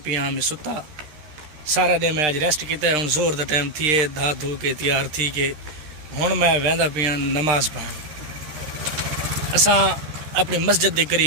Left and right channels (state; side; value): late; left; 13 ms